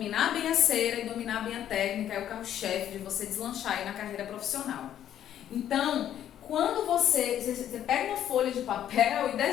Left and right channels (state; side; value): quieter; right; 10.8 dB